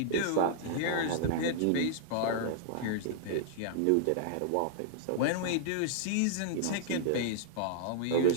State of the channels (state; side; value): different; both; correlation -0.01